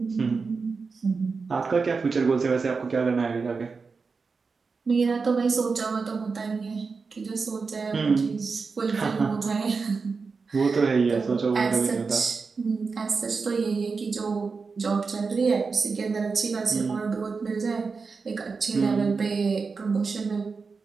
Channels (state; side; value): quieter; left; 4.7 dB